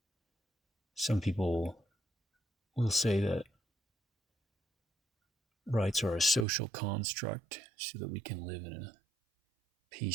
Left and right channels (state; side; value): drops out; left; at 6.5 s